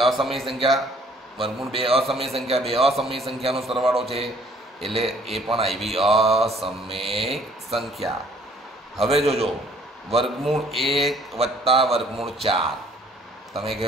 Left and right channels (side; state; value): both; normal; correlation 0.59